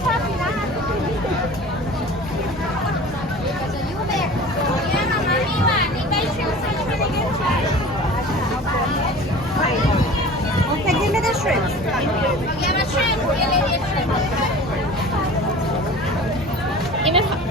Okay, give me the shrimp.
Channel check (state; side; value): normal; both; correlation 0.40